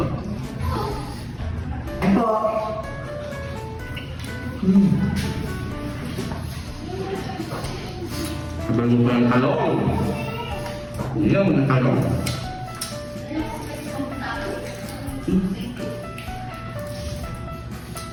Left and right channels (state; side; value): identical; both; correlation 1.00